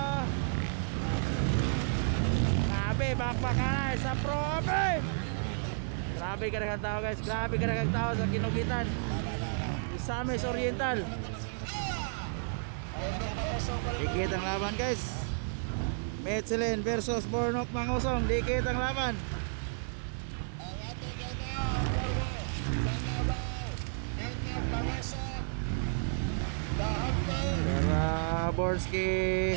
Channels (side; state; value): left; silent; digital silence